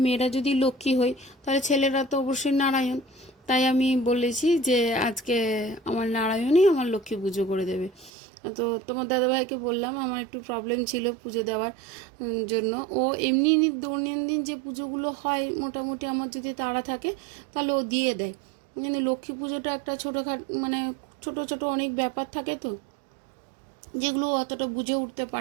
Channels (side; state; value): left; drops out; at 8.1 s